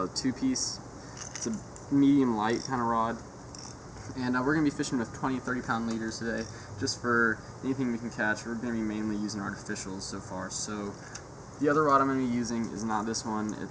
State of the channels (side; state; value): both; identical; correlation 1.00